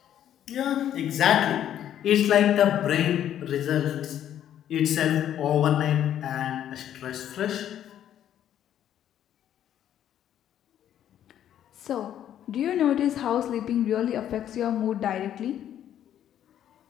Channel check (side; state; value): right; quieter; 10.7 dB